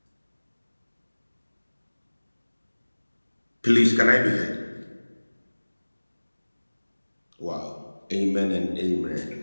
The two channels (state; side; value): inverted; both; correlation -1.00